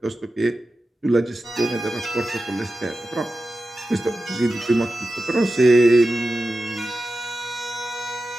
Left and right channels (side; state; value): both; normal; correlation 0.93